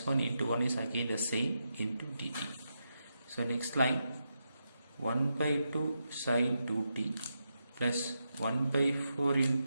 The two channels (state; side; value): inverted; both; correlation -0.85